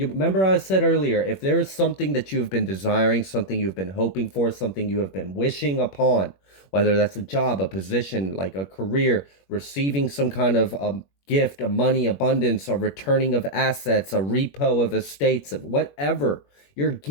remember I said earlier, if there is something that you have been desiring, something you've been hoping for, something you have been wishing upon, whether that's a job, a position, like a career, receiving some kind of gift, a money abundance, a returning of assets, a repo of estates, of whatever, you're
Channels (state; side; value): late; right; 21 ms